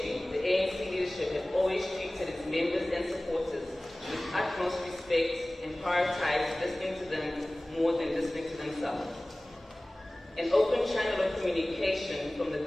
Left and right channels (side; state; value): both; normal; correlation 0.98